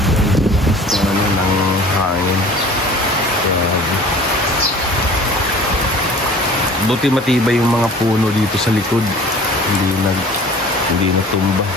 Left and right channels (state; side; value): normal; both; correlation 0.46